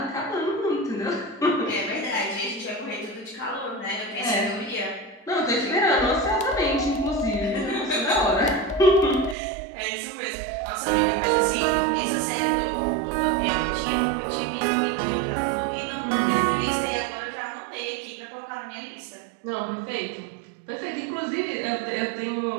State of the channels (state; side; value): drops out; left; at 9.3 s